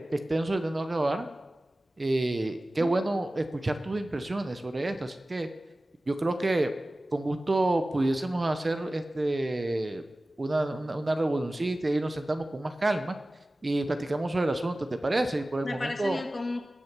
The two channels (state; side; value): normal; both; correlation 0.97